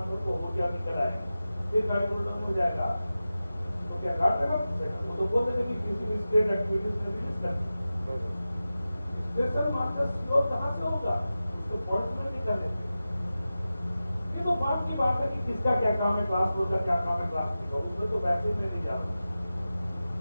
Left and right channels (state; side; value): inverted; both; correlation -0.94